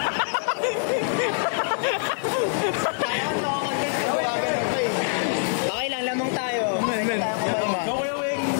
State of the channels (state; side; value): silent; right; digital silence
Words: Okay lang, lamang tayo. Men.